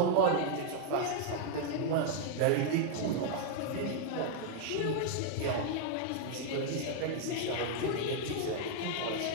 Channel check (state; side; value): different; both; correlation 0.00